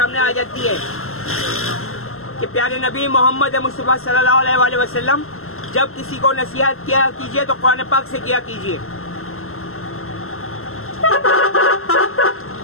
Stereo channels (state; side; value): late; right; 0.62 ms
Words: आ जाती है कि प्यारे नबी मोहम्मद मुस्तफ़ा सल्लल्लाहु अलैहि वसल्लम जब किसी को नसीहत किया कीजिए तो कुरान पाक से किया कीजिए।